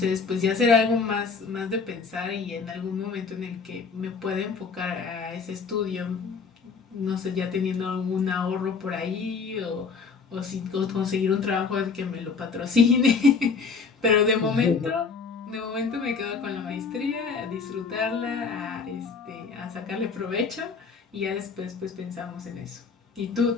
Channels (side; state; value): right; quieter; 5.1 dB